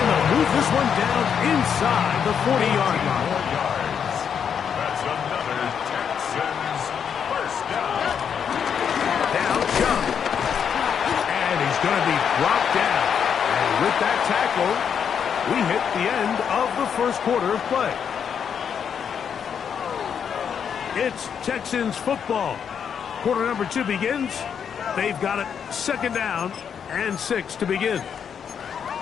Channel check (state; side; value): quieter; right; 7.6 dB